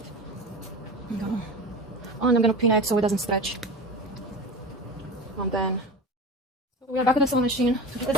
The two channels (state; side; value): normal; both; correlation 0.30